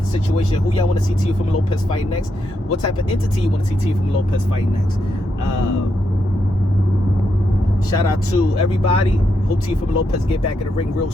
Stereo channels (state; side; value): normal; both; correlation 0.81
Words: situation. Who y'all want to see Teofimo Lopez fight next? What type of entity you want to see Teofimo Lopez fight next? Shout out to everybody. Hope Teofimo Lopez get back in the ring real